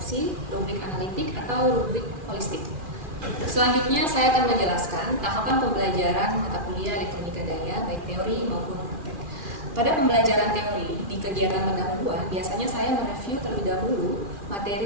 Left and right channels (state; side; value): late; left; 2.4 ms